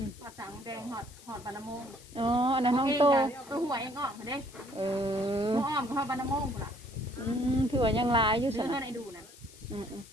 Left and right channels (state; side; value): noise; left; hiss, 21 dB below the sound